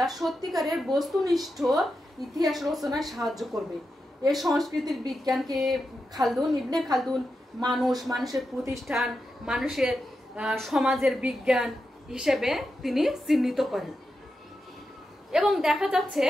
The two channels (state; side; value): normal; both; correlation 0.88